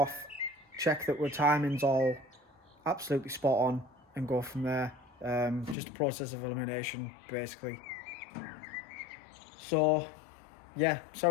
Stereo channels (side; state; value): right; drops out; at 5.8 s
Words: check that our timing's all absolutely spot on, and go from there. Just a process of elimination basically. So yeah,